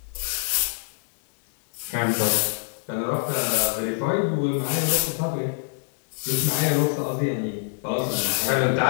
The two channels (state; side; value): silent; right; 62 dB below the other